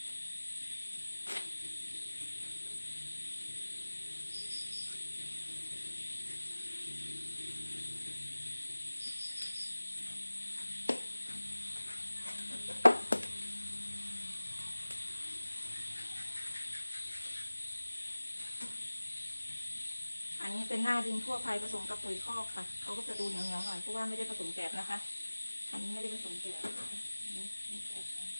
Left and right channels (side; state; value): both; inverted; correlation -1.00